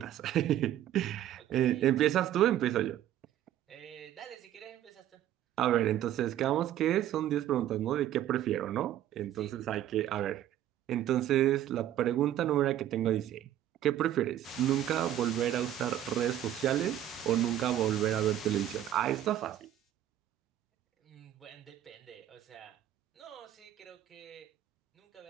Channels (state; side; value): quieter; left; 11.9 dB